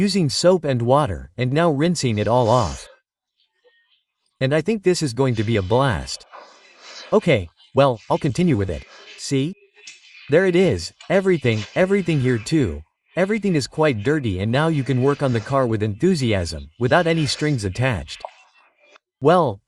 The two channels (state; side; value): identical; both; correlation 1.00